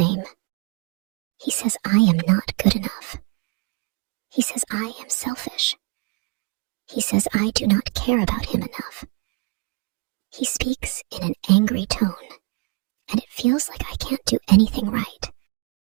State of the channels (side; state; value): left; quieter; 28.4 dB